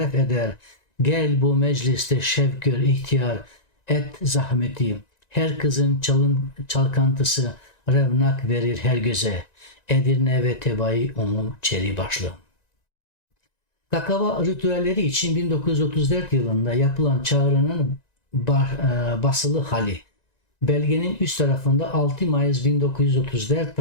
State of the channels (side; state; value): right; late; 1.9 ms